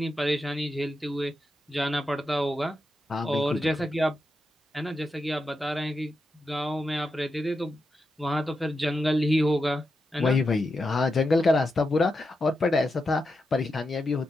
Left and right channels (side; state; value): both; normal; correlation 0.87